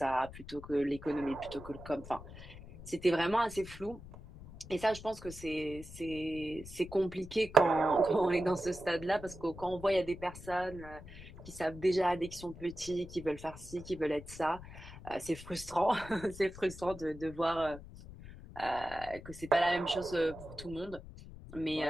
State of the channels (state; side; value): noise; left; rumble, 15 dB below the sound